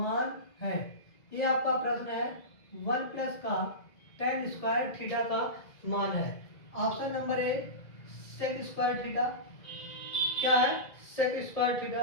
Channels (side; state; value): right; late; 2.0 ms